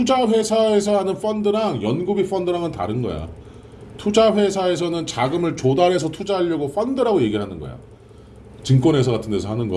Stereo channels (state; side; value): identical; both; correlation 1.00